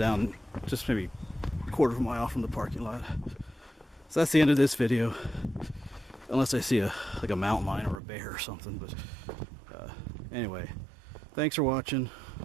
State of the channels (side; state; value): left; drops out; at 8.0 s